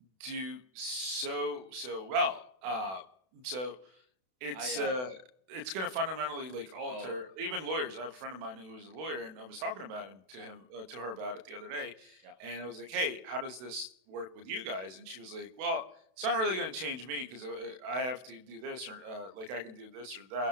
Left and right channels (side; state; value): left; late; 32 ms